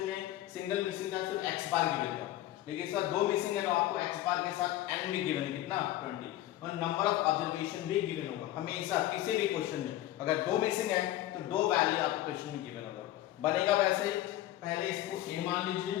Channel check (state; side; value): quieter; right; 14.5 dB